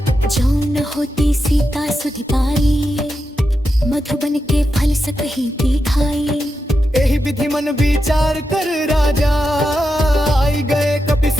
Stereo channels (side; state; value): both; normal; correlation 0.87